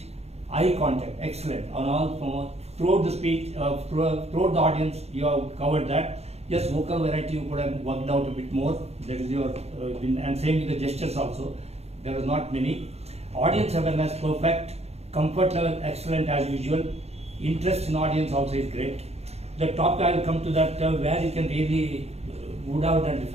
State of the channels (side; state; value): left; late; 0.31 ms